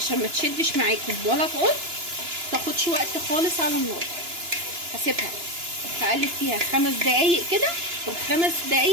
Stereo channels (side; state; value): left; late; 2.9 ms